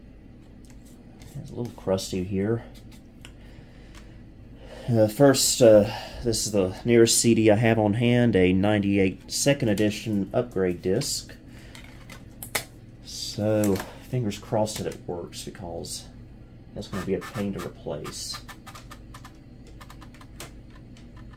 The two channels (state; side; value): identical; both; correlation 1.00